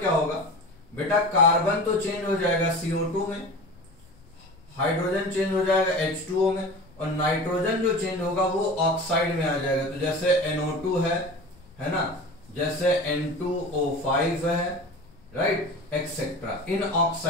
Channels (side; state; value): left; noise; rumble, 25 dB below the sound